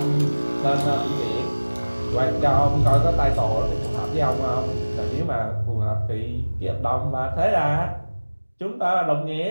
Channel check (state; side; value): inverted; both; correlation -1.00